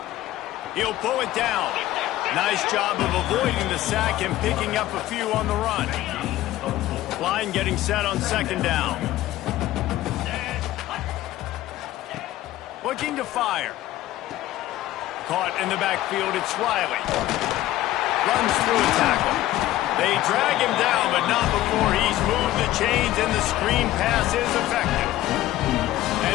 He'll pull it down. Nice job of avoiding the sack and picking up a few on the run. Line getting set on second down. Looking to fire. Caught in the backfield, it's Riley. Runs through a tackle. They drag him down, but not before he's moved the chains, and the screen pass is effective.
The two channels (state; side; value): quieter; right; 15.0 dB